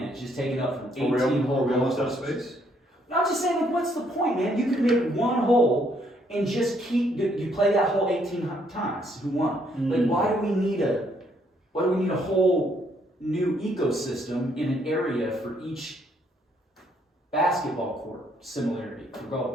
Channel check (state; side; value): normal; both; correlation 0.70